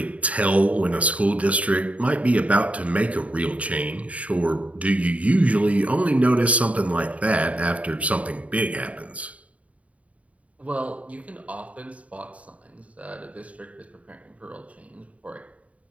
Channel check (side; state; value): left; late; 0.067 ms